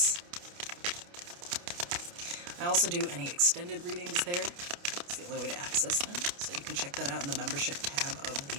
I also do any extended readings there. It's the only way to access them, so you can check that out in the membership tab of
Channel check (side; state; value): left; late; 29 ms